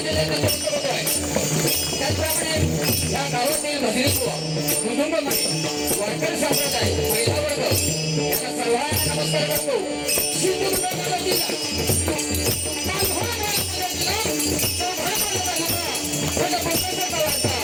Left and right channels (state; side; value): identical; both; correlation 1.00